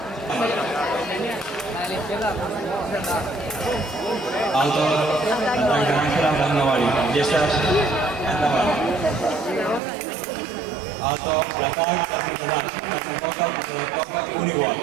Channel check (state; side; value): drops out; left; at 9.8 s